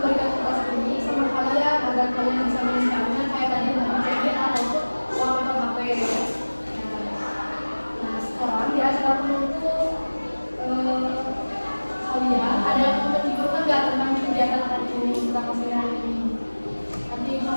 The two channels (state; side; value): inverted; both; correlation -1.00